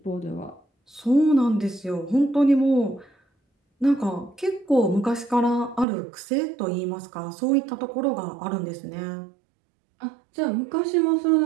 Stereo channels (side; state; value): left; drops out; at 5.9 s